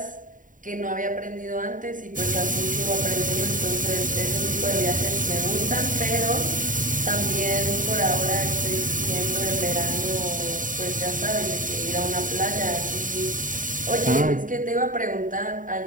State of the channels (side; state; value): left; late; 0.38 ms